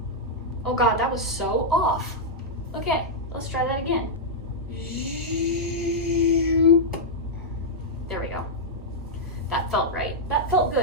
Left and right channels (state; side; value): normal; both; correlation -0.06